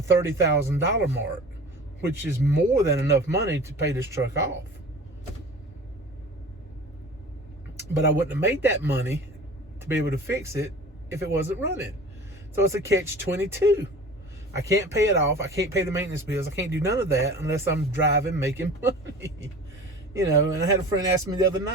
mark, which is more than enough money to pay this truck off. But I wouldn't have made that money to be able to fix it if it wasn't running. So it's a catch-22. I can't pay it off. I can't pay the maintenance bills. I can't do none of that unless I'm driving, making money. You know, and I had a friend ask me the other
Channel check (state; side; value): normal; both; correlation 0.40